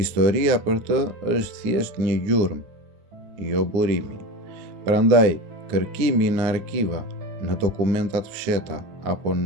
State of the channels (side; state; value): left; late; 9.8 ms